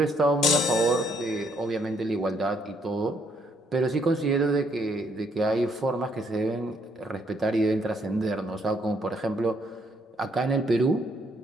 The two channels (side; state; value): both; normal; correlation 0.70